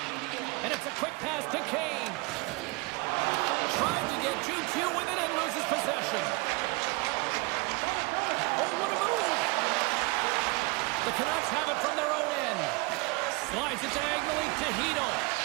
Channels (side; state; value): left; quieter; 26.1 dB